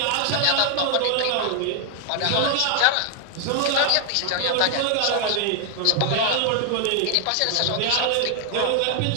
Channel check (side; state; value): both; different; correlation 0.00